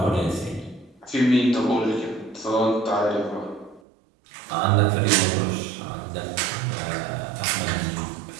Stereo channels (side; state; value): left; drops out; at 3.8 s